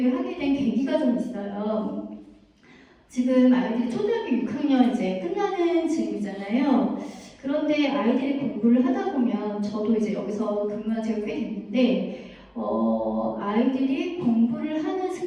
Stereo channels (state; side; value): identical; both; correlation 1.00